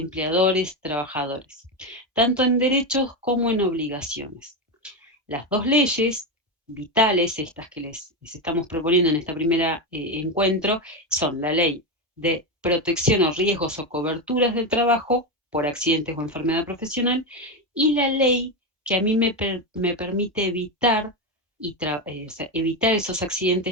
trabajadores, tanto en derechos como en obligaciones. Las dos leyes vitales, estas que les estamos proponiendo en este primer encuentro, son la ley de protección o riesgos o coberturas del trabajo por accidentes o enfermedad profesional y la ley que a mí me permite evitar, o sea, evitar esos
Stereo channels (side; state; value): both; normal; correlation 0.12